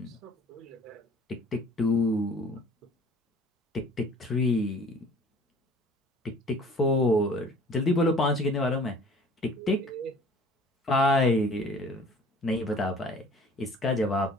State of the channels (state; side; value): normal; both; correlation 0.50